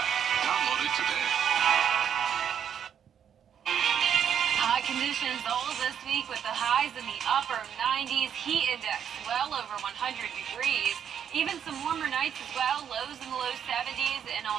Download it today. Hot conditions all this week with the highs in the upper 90s, heat index well over 100 degrees. Even some warmer nights as well, lows in the low 70s. And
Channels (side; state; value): left; quieter; 8.5 dB